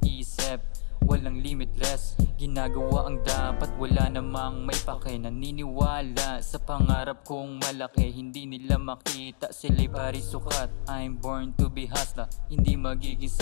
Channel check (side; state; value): right; silent; 59 dB below the other